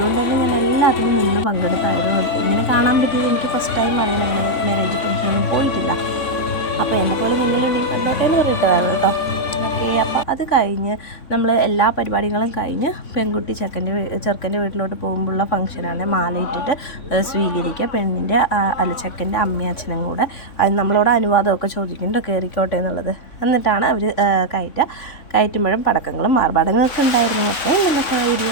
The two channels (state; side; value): late; right; 3.5 ms